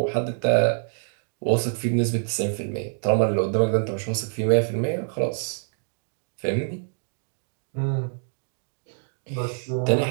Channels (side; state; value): left; silent; 60 dB below the other